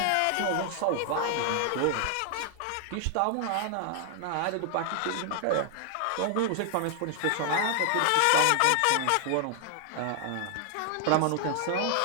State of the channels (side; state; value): both; different; correlation 0.00